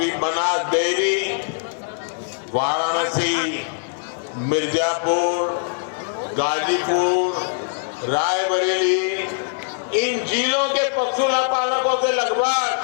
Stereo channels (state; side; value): silent; right; digital silence